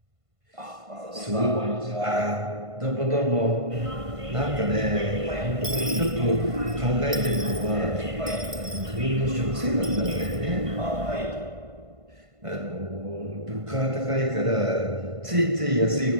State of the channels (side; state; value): left; late; 1.5 ms